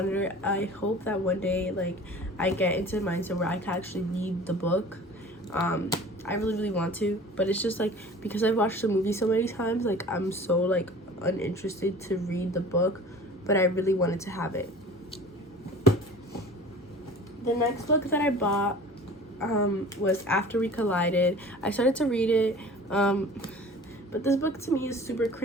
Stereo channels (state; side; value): normal; both; correlation 0.43